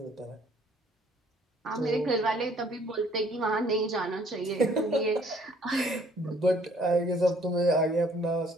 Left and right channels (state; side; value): normal; both; correlation 0.60